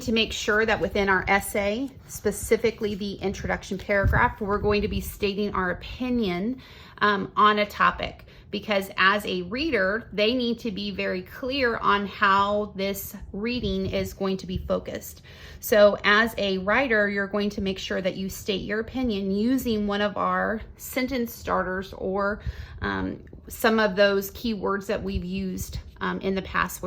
to make sure that within our essay, specifically the introduction paragraph, we're going to be stating our opinion on a topic, because as a reader, they need to be very clear on how this reading is going to be focused. So as a writer, you're going to make sure that you state your opinion using one of our sentence starters or some of those keywords that we've used in the past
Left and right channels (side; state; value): both; identical; correlation 1.00